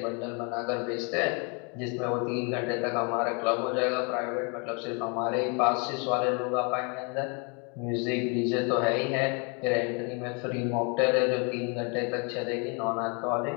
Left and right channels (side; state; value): right; quieter; 34.4 dB